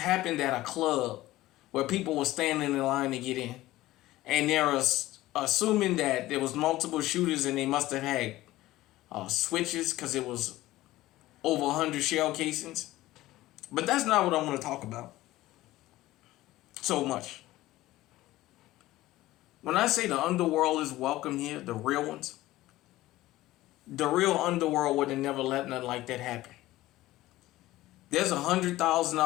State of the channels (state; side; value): quieter; right; 16.6 dB